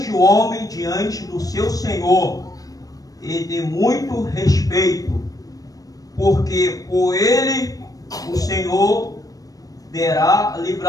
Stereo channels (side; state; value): right; late; 0.18 ms